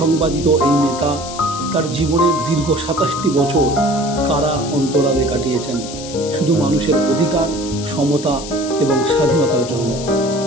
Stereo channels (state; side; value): noise; left; hiss, 12 dB below the sound